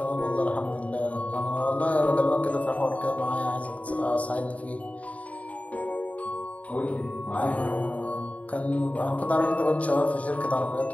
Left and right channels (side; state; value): right; late; 0.068 ms